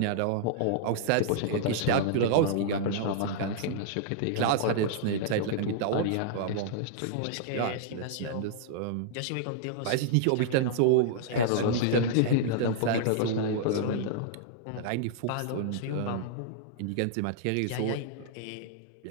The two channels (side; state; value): both; different; correlation -0.01